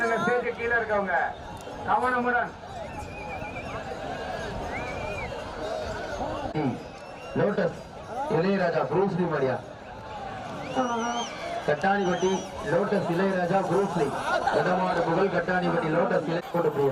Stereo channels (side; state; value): both; identical; correlation 1.00